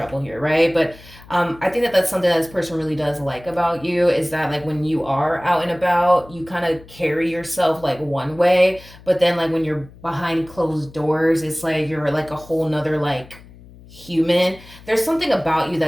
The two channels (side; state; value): left; noise; hum, 21 dB below the sound